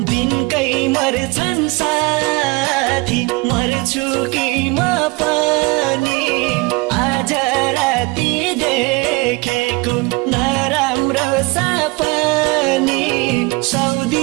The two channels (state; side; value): quieter; left; 25.5 dB